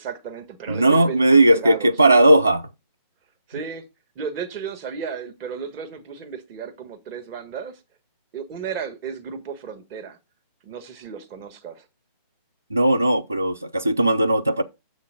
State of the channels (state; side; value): inverted; both; correlation -0.84